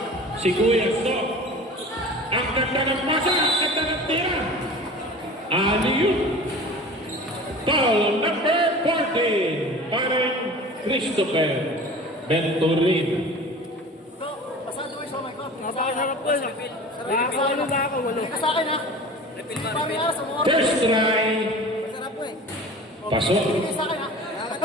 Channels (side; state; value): both; normal; correlation 0.39